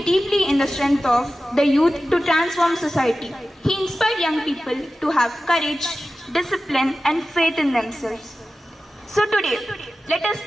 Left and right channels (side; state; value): both; normal; correlation 0.94